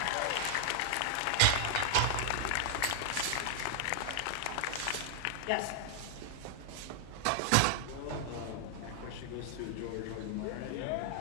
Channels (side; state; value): both; different; correlation 0.00